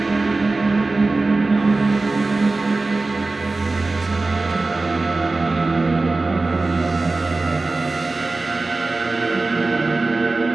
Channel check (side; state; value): left; quieter; 3.4 dB